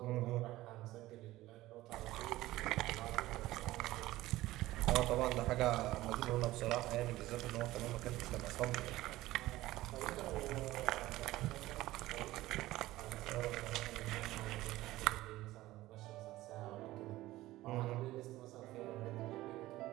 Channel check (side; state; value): left; quieter; 16.9 dB